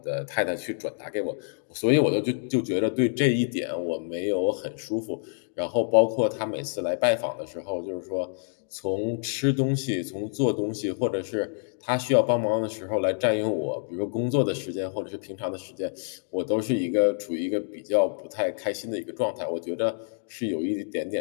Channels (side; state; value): right; silent; digital silence